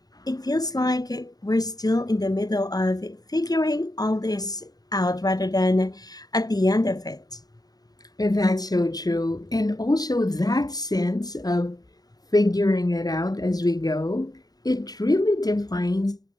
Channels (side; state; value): right; late; 0.19 ms